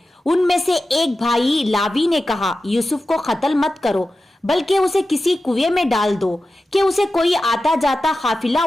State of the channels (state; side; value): normal; both; correlation 0.93